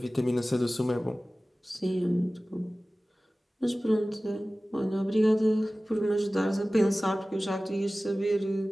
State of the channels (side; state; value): both; normal; correlation 0.97